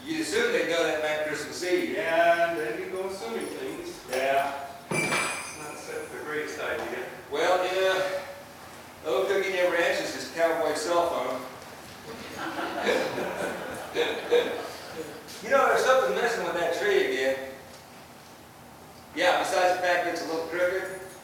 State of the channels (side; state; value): both; identical; correlation 1.00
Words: you assume they know that night Christmas Eve. Yeah, and then you go assuming things. Yeah. Not the greatest idea. Well, yeah. Little Cookie never answers his cowboy cell phone. You know,